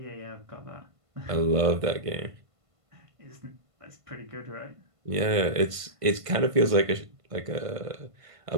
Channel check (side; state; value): left; late; 1.5 ms